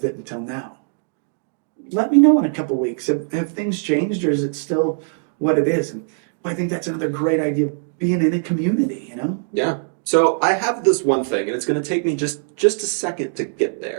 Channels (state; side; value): silent; left; 65 dB below the other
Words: it until now. Let me know in a couple weeks. Have things changed, or is it still what it is? And I think that's another great idea of being in a community, you know? Yeah. So I have this one thing, and it's going to take me just a second to get